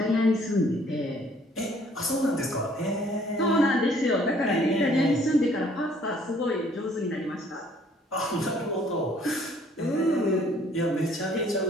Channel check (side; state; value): both; normal; correlation 0.60